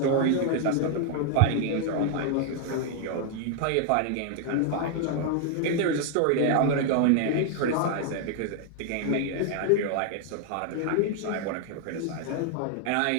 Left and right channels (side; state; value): both; different; correlation 0.00